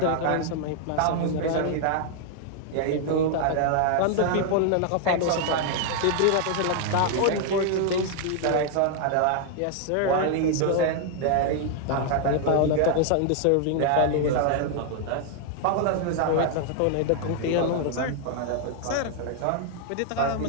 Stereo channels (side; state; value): both; different; correlation 0.00